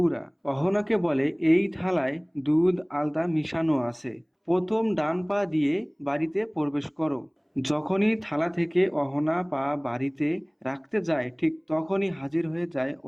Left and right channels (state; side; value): identical; both; correlation 1.00